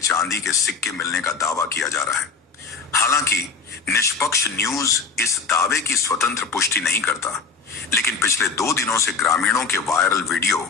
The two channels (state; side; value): quieter; right; 5.0 dB